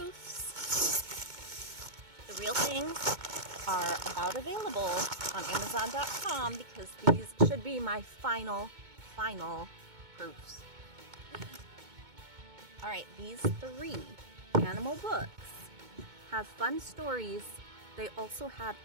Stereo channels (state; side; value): late; left; 2.2 ms